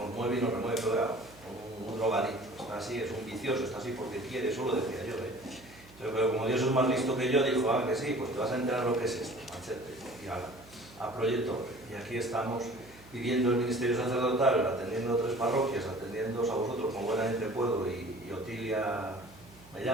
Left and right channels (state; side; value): noise; right; hum, 23 dB below the sound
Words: mueve y nos remueve, pero un drogadicto, está así, es un vicioso, está así porque quiere, eso lo decía yo, pero como Dios es más listo que yo, dijo, que sí, pues te vas a enterar lo que es esto, machete, y a Proyecto. Y aquí estamos viviendo el ministerio sacerdotal, atendiendo a 3 parroquias, atendiéndoos a vosotros como buenamente puedo, y Otilia me